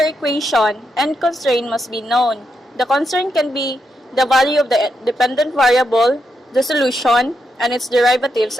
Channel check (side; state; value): both; normal; correlation 0.82